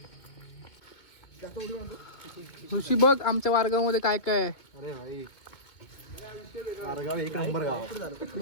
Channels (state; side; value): late; right; 2.3 ms